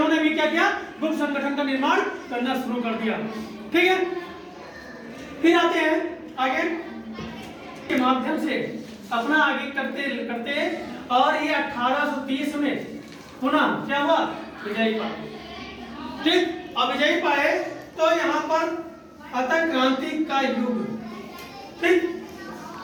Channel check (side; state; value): both; identical; correlation 1.00